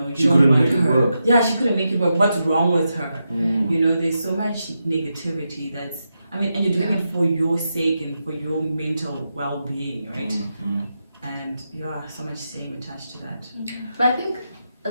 you She don't couldn't want make it her. work. Yeah, she couldn't make it work. What's wrong with her? You know, there's so much negativity that's, I mean, and you're doing it for your sake and for your mental well-being, right? And so much shame attached to that. But I think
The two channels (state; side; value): inverted; both; correlation -0.87